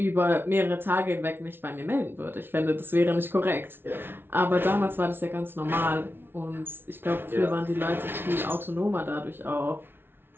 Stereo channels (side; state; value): left; late; 0.11 ms